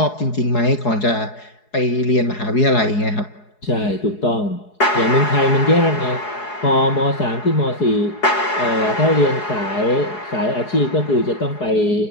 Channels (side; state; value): right; late; 4.8 ms